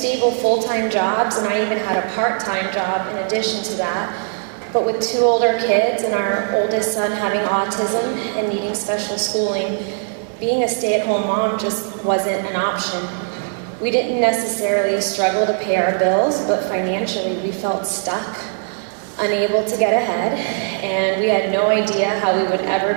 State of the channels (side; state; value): left; silent; 66 dB below the other